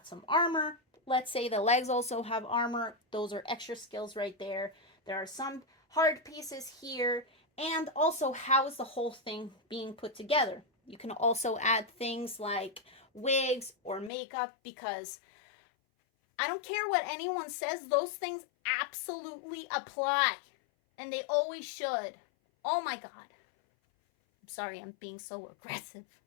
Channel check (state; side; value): drops out; right; at 14.1 s